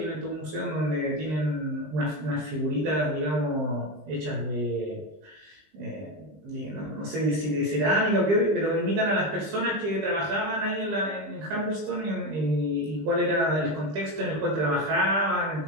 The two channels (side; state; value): left; late; 20 ms